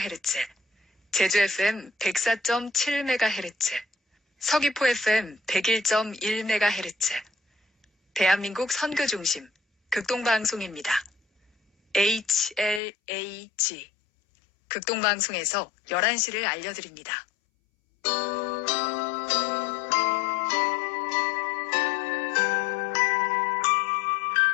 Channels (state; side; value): drops out; right; at 12.8 s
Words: 제주 FM 104.7MHz, 서귀포 FM 101.1MHz, 대한민국 선교중심 극동방송입니다. HLAG 극동방송에서 11시를 알려드립니다.